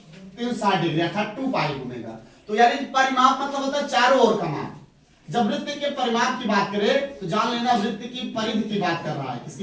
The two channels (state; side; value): identical; both; correlation 1.00